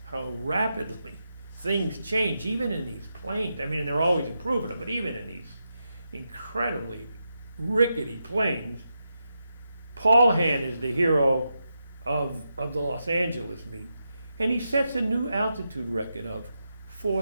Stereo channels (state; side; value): inverted; both; correlation -0.86